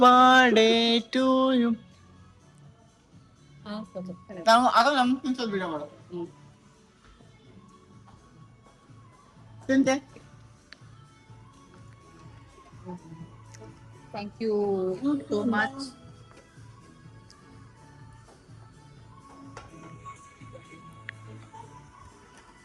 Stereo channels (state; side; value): identical; both; correlation 1.00